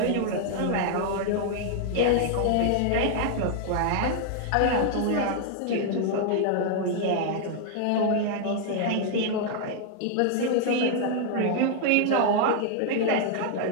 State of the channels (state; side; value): different; both; correlation 0.00